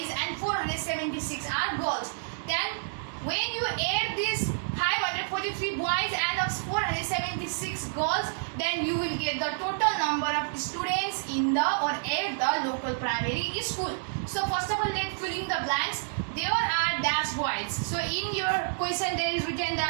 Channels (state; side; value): silent; left; digital silence